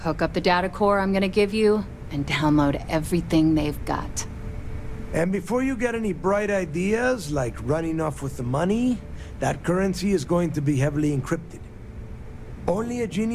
up the data core I'm gonna give you, and download everything they've got. And before you get any bright ideas, like running off with the money, that currency is going to be heavily encrypted. Only a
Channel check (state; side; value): identical; both; correlation 1.00